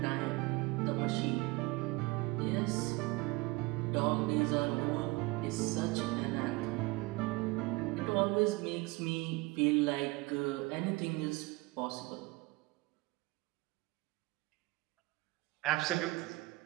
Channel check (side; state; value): left; quieter; 23.0 dB